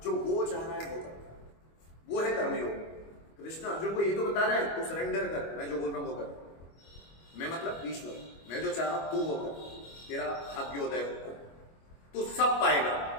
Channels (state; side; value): late; right; 25 ms